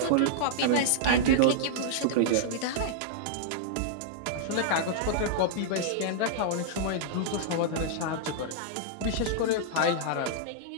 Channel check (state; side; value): different; both; correlation -0.02